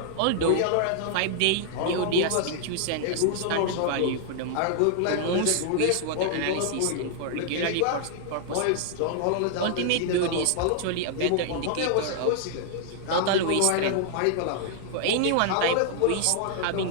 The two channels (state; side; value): different; both; correlation -0.01